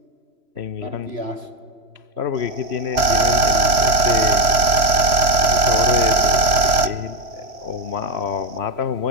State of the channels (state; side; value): late; left; 3.0 ms